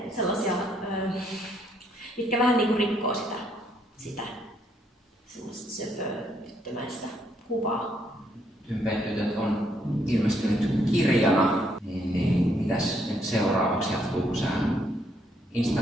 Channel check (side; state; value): both; normal; correlation 0.72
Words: sellaisia, mitkä vähän niin kuin rikkoo sitä sellaista söpötyttömäistä kuvaa. Tympetytöt on ilmestynyt kirjana, niin mitäs nyt seuraavaksi jatkuu? Sä